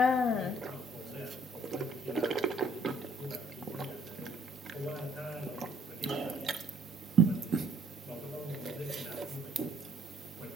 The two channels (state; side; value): normal; both; correlation 0.64